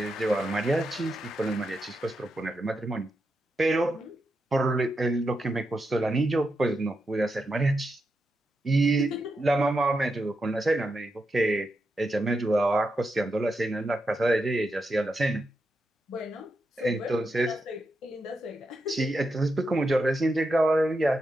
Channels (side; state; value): both; normal; correlation 0.86